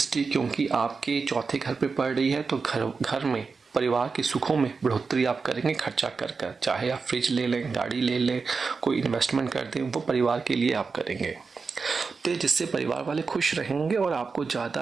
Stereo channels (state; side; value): quieter; left; 4.8 dB